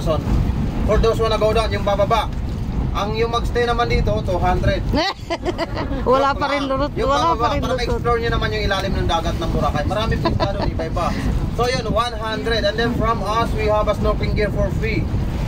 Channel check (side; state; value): both; identical; correlation 1.00